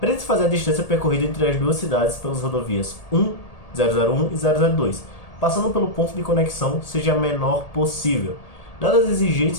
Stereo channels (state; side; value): late; right; 1.8 ms